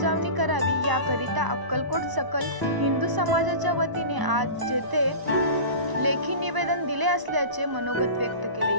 करावी। याकरिता अक्कलकोट सकल हिंदू समाजाच्या वतीने आज जेथे लेखी निवेदन दिले असल्याचे मनोगत व्यक्त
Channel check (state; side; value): late; left; 1.0 ms